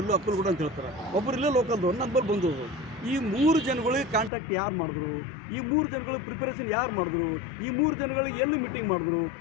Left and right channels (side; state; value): right; drops out; at 4.3 s